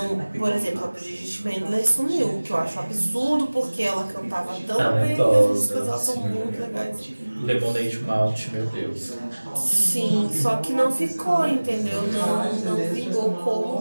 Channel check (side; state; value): both; inverted; correlation -1.00